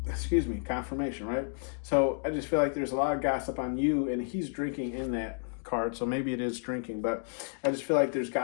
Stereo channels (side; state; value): right; silent; 57 dB below the other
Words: Excuse me, confirmation, right? So I just feel like there's a lot of gossip on you, and he's drinking in that card, so maybe it is drinking, but I just feel like there's